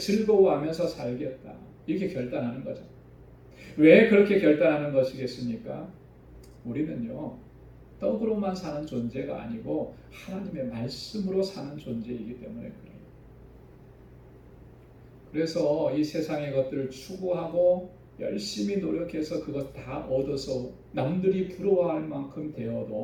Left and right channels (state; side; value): identical; both; correlation 1.00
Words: 살겠다. 이렇게 결단하는 거죠. 왜 그렇게 결단하는 것이겠습니까? 우리는요, 떡으로만 사는 존재가 아니고 하나님의 말씀으로 사는 존재이기 때문에 그래요. 그래서 이 세상의 것들을 추구하고 열심히 노력해서 그것 다 얻어서 남들이 부러워할 만큼